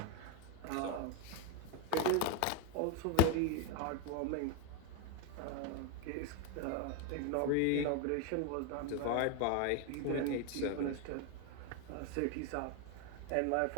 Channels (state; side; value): different; both; correlation 0.02